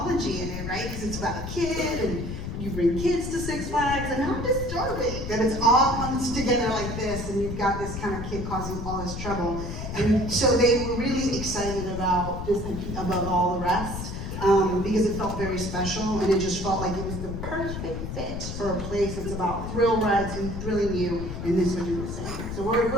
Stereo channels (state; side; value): noise; left; rumble, 6 dB below the sound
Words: in it, right? Because it's about a kid, and you bring kids to Six Flags, and how disturbing that it's all comes together like this, and you've got this kind of kid causing all this trouble. And so they were really excited about this above all the rest. Because it felt very special, and it just felt like it was the perfect fit for a place that's about thrill rides and thrilling you, and this would do the same. So we're